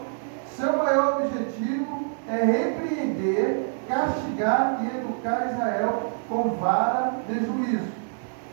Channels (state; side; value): silent; left; digital silence